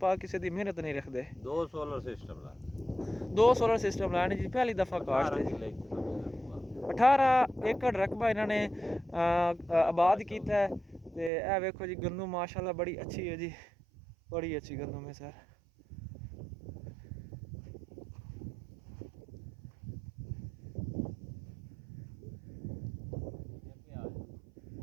ਪਾਕ ਕਿਸੇ ਦੀ ਮਿਹਨਤ ਨਹੀਂ ਰੱਖਦੇ। ਦੋ ਸੋਲਰ ਸਿਸਟਮ ਲਾਣੇ ਜੀ ਪਹਿਲੀ ਦਫਾ ਕਾਸ਼ਤ ਹੈ। 18 ਏਕੜ ਰਕਬਾ ਇਹਨਾਂ ਨੇ ਆਬਾਦ ਕੀਤਾ ਹੈ। ਤੇ ਇਹ ਵੇਖੋ ਜੀ ਗੰਦਮ ਮਾਸ਼ਾਅੱਲਾ ਬੜੀ ਅੱਛੀ ਹੈ ਜੀ, ਬੜੀ ਅੱਛੀ ਗੰਦਮ ਹੈ ਸਰ।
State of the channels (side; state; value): left; drops out; at 11.3 s